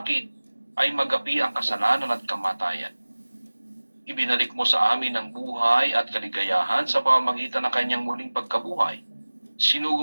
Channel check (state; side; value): inverted; both; correlation -1.00